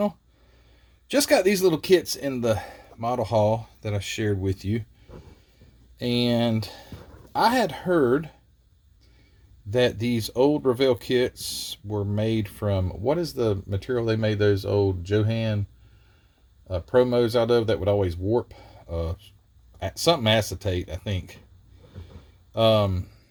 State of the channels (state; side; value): identical; both; correlation 1.00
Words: Just got these little kits in the model haul that I shared with you. And I had heard that these old Revell kits were made from, what is the material they made those old Johan promos out of that would always warp? Something acetate, I think. So